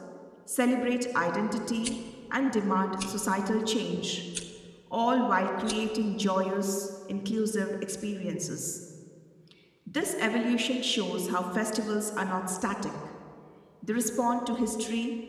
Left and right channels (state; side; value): identical; both; correlation 1.00